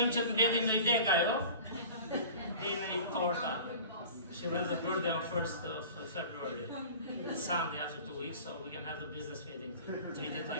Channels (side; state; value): both; inverted; correlation -0.41